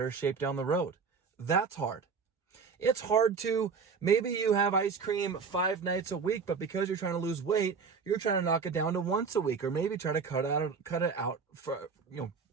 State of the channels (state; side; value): quieter; left; 5.4 dB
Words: shape down the road. That's hard. It's hard to, maybe you have ice cream 5 nights a week, but because you're trying to lose weight, you're trying to knock it down to once a week, or maybe try to cut it out for,